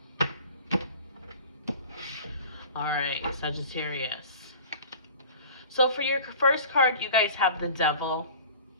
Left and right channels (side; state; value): both; inverted; correlation -0.41